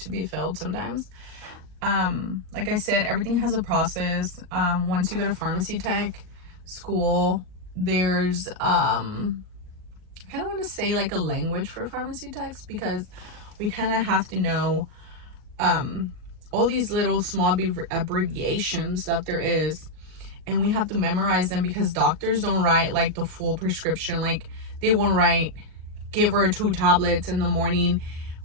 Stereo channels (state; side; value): late; left; 39 ms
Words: be filled sometimes. Like I said, everything has a process. Once you go to pharmacy tech school, there's I kind of want to say like a language for pharmacy techs, because we kind of have to know all these little small abbreviations that there is, and we have to memorize them, because doctors don't write like the full prescription. Like they won't write, give her 2 tablets in the morning